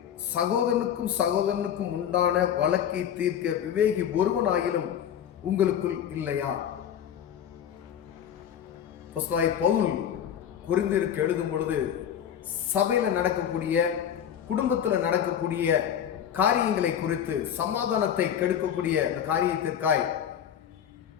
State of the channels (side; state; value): right; quieter; 9.3 dB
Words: சகோதரனுக்கும் உண்டான வழக்கை தீர்க்க விவேகி ஒருவனாயிலும் உங்களுக்குள் இல்லையா? பவுல் கொரிந்தியருக்கு எழுதும் பொழுது சபையில நடக்கக்கூடிய, குடும்பத்துல நடக்கக்கூடிய காரியங்களை குறித்து, சமாதானத்தை கெடுக்கக்கூடிய அந்த காரியத்திற்காய்